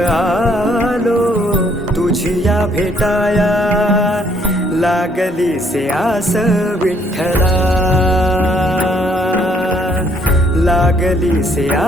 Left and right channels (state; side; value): normal; both; correlation 0.67